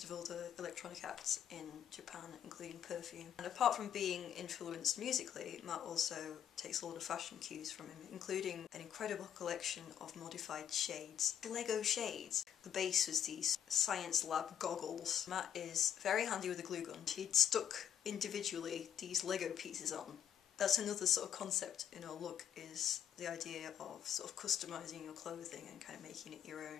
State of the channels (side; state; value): right; quieter; 9.5 dB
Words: of other electronic acts in Japan, including Perfume. And apart from being influenced musically, Matt also takes a lot of fashion cues from him, including an incredible collection of modified shades. Lego shades. The base was these science lab goggles. Matt is very handy with a glue gun. He'd stuck individually these Lego pieces on. That's another sort of concept in our look, is the idea of sort of customising your clothing and kind of making it your